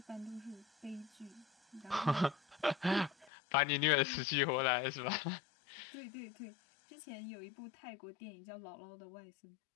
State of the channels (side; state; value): right; drops out; at 3.3 s